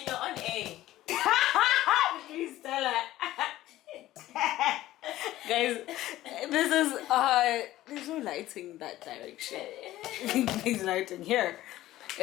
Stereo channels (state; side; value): quieter; right; 15.2 dB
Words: your own A? Please tell her. Guys, this is there's no lighting that direction. There's lighting here.